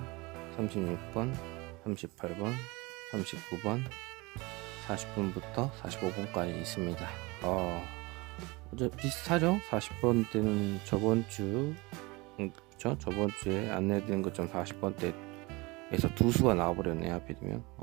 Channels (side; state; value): left; quieter; 24.5 dB